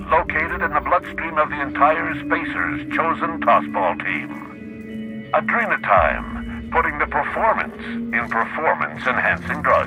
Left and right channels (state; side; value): identical; both; correlation 1.00